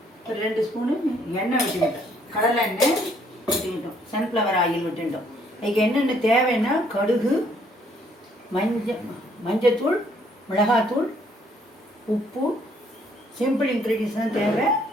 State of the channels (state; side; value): normal; both; correlation 0.66